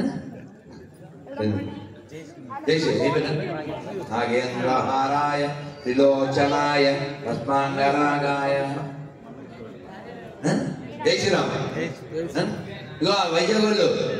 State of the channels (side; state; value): both; identical; correlation 1.00